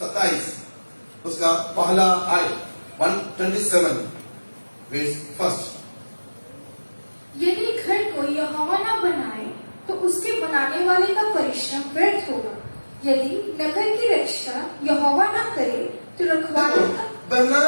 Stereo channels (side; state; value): both; inverted; correlation -1.00